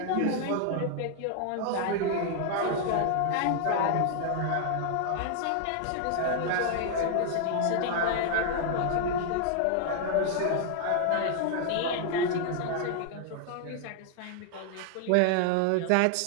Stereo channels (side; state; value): both; different; correlation 0.00